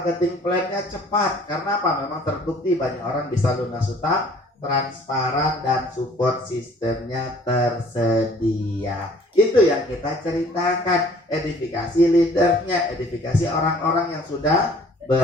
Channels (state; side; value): normal; both; correlation 0.54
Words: plan-nya cepat. Karena apa? Memang terbukti banyak orang bisa lunas utang, transparan dan support sistemnya tersedia. Itu yang kita ceritakan. Edifikasi leadernya, edifikasi orang-orang yang sudah